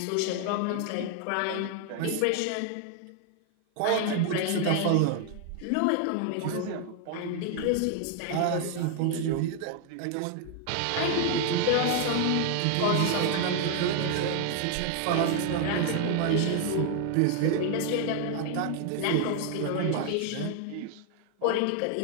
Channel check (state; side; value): different; both; correlation 0.00